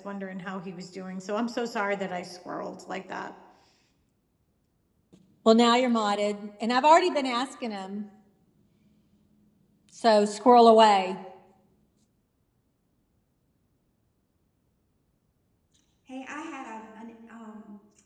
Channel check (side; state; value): both; identical; correlation 1.00